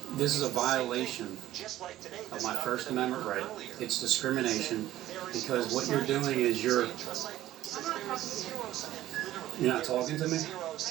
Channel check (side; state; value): left; quieter; 14.1 dB